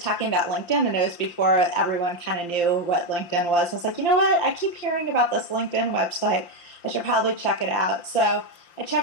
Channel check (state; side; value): late; right; 5.8 ms